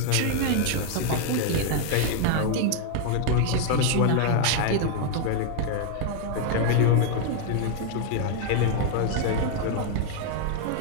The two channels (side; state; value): both; different; correlation 0.00